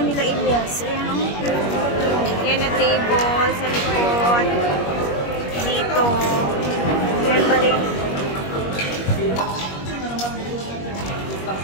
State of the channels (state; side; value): late; right; 21 ms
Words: Elias. Ayan o. Yan na table sa likod. Dito. Yan balik.